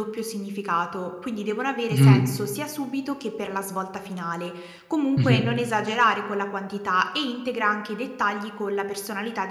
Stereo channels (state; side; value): identical; both; correlation 1.00